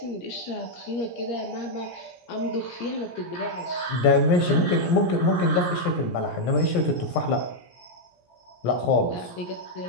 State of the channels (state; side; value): late; right; 17 ms